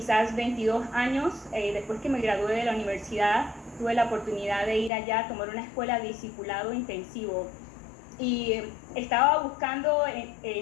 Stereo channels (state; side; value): drops out; right; at 4.9 s